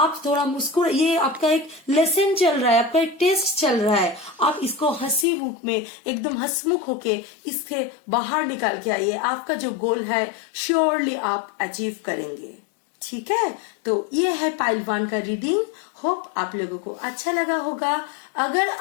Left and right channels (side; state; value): right; drops out; at 5.2 s